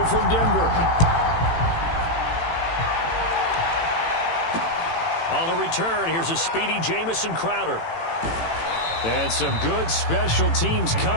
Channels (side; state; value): right; late; 18 ms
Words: from Denver. On the return, here's a speedy Jamison Crowder. And some good special teams